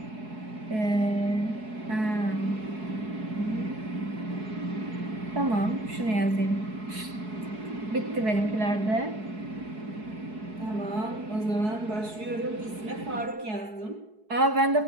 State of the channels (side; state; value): left; late; 4.7 ms